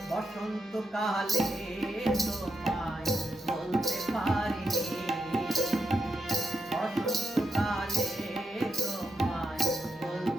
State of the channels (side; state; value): both; normal; correlation 0.84